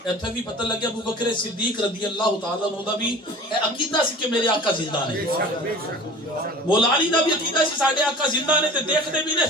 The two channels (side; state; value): both; normal; correlation 0.41